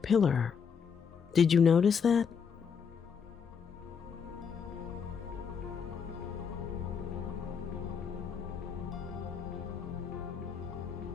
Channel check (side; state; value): right; quieter; 6.5 dB